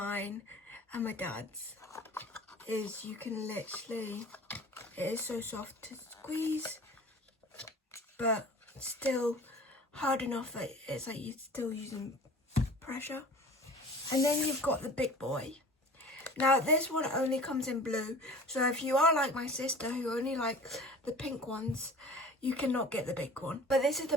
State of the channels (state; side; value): normal; both; correlation 0.42